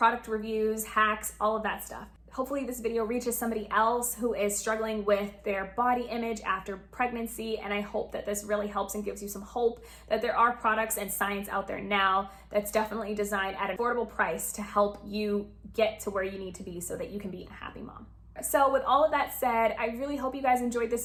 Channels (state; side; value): identical; both; correlation 1.00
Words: reviews, hacks, all of that stuff. Hopefully this video reaches somebody else who is struggling with their body image after pregnancy, and I hope that this really helps and gives you some hope that there are products and science out there now that's definitely designed at an affordable price to help you get to where you need to be so that you can be a happy mom. So with all of that said, I really hope you guys enjoyed this